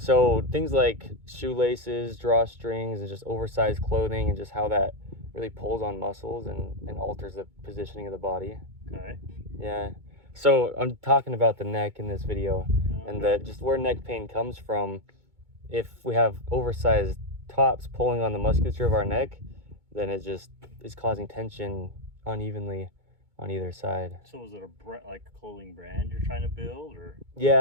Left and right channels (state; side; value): late; left; 2.2 ms